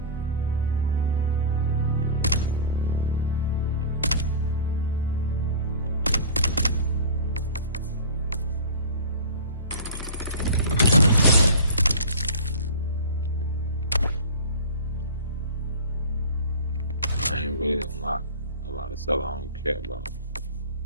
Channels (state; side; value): inverted; both; correlation -0.36